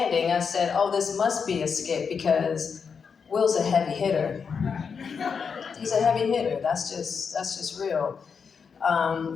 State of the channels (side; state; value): right; quieter; 6.0 dB